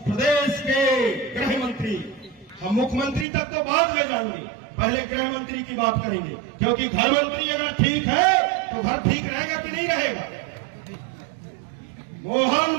प्रदेश के गृह मंत्री, हम मुख्यमंत्री तक तो बाद में जाएंगे, पहले गृह मंत्री की बात करेंगे, क्योंकि घर मंत्री अगर ठीक है तो घर ठीक रहेगा कि नहीं रहेगा?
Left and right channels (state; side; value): drops out; left; at 3.2 s